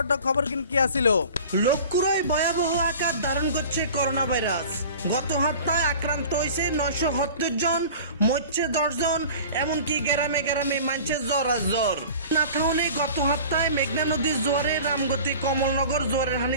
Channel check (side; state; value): both; inverted; correlation -0.41